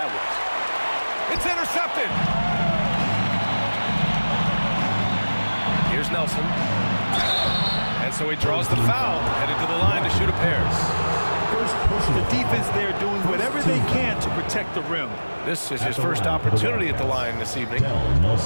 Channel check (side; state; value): both; inverted; correlation -1.00